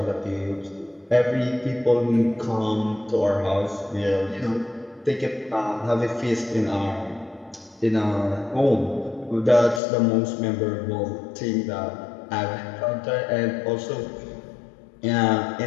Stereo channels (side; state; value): right; drops out; at 9.8 s